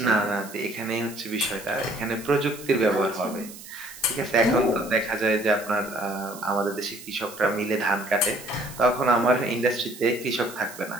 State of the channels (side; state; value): right; noise; hiss, 16 dB below the sound